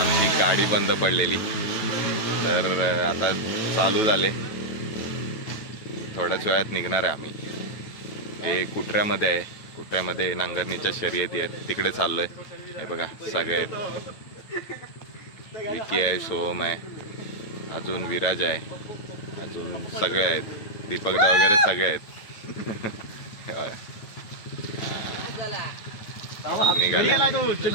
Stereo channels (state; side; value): late; right; 9.2 ms